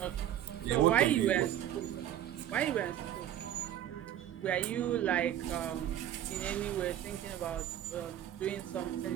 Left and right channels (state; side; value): quieter; left; 11.3 dB